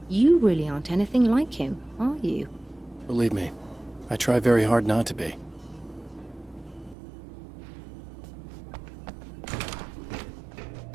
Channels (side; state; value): left; drops out; at 7.0 s